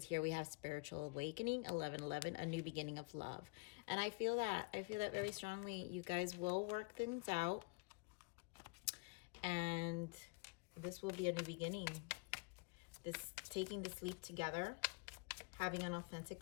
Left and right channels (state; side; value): quieter; right; 30.4 dB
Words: here we have spiritual awakening, 1111, a new beginning of love. And I feel that. I feel that very strongly. You guys will work things out. And this will be a new beginning. This taking this leap together, having an authentic